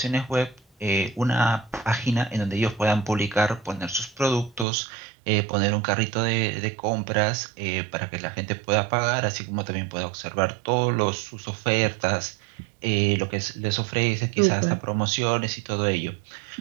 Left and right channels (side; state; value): left; drops out; at 4.7 s